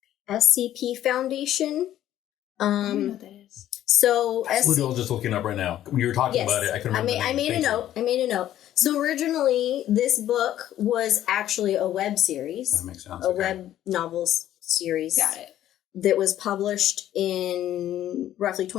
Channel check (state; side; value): quieter; right; 12.3 dB